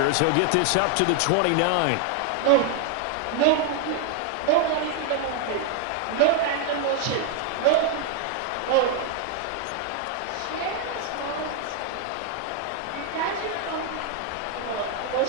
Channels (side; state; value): both; different; correlation 0.00